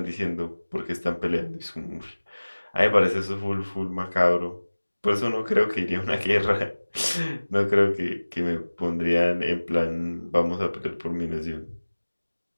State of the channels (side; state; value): both; inverted; correlation -1.00